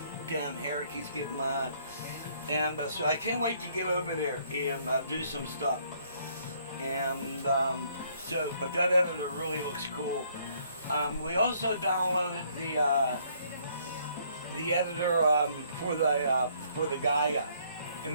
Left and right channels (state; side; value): inverted; both; correlation -0.65